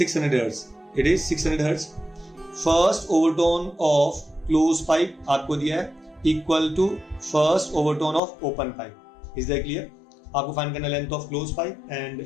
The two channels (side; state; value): right; drops out; at 8.2 s